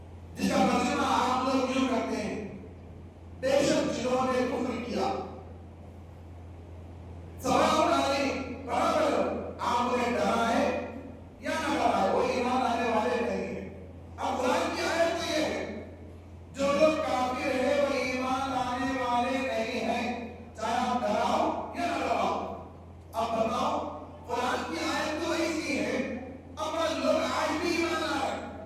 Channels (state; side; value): identical; both; correlation 1.00